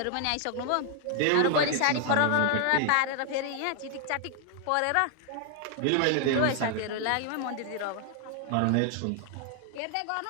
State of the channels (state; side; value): different; both; correlation 0.00